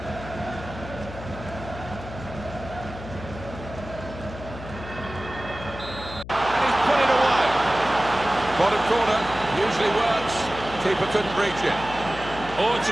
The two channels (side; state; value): left; noise; hum, 12 dB below the sound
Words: And he's put it away. Bottom corner, usually works. Keeper couldn't reach it. Oh, it's a